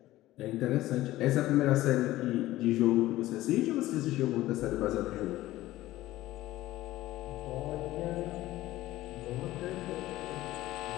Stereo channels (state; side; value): quieter; right; 16.2 dB